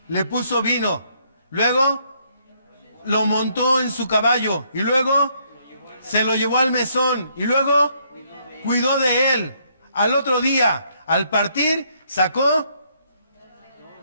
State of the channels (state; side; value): inverted; both; correlation -0.70